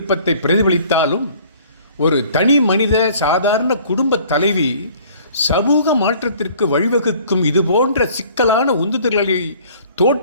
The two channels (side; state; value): both; inverted; correlation -0.53